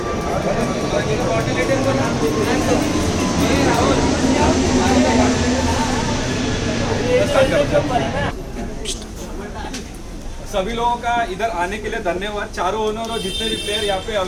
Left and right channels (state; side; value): identical; both; correlation 1.00